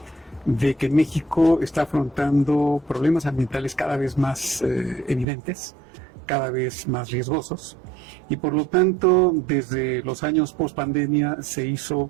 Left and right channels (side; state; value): left; drops out; at 5.2 s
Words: de que México está afrontando problemas ambientales cada vez más evidentes, cada vez más riesgosos, y por lo tanto, desde los años post-pandemia se hizo